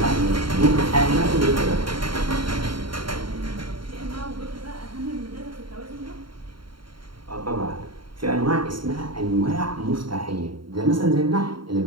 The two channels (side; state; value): left; late; 0.73 ms